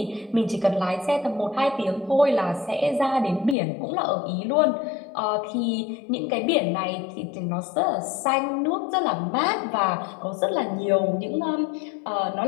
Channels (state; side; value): drops out; right; at 3.6 s